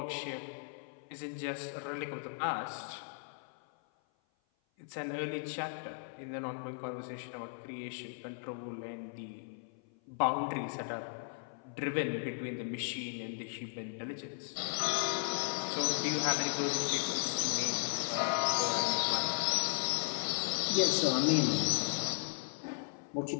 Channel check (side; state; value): right; silent; 54 dB below the other